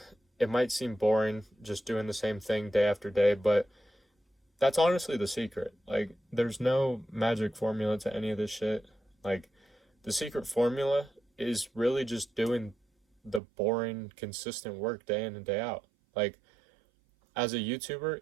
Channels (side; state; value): left; drops out; at 13.4 s